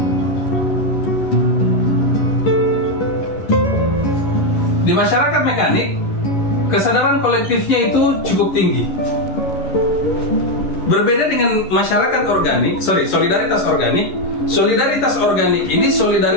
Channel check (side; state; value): right; late; 11 ms